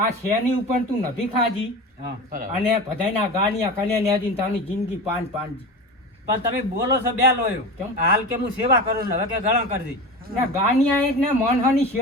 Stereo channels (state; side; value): normal; both; correlation 0.28